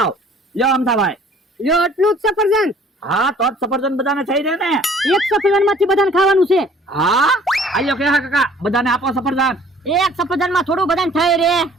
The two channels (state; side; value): normal; both; correlation 0.54